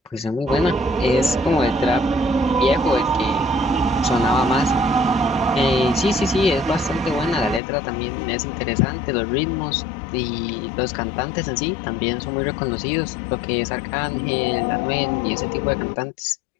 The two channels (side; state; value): right; drops out; at 7.6 s